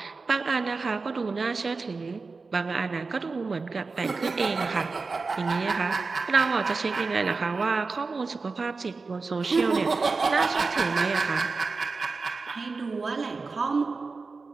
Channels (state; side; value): quieter; left; 4.2 dB